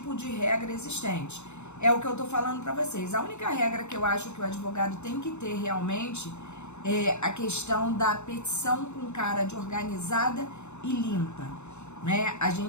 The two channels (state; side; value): late; right; 0.82 ms